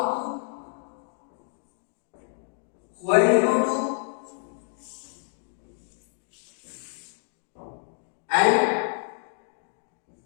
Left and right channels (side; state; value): right; silent; digital silence